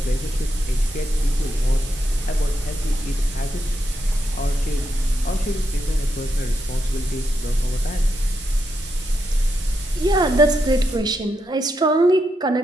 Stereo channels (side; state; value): both; normal; correlation 0.83